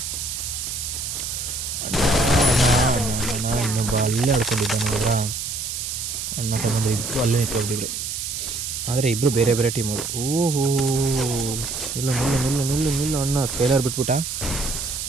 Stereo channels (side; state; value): right; noise; hiss, 4 dB below the sound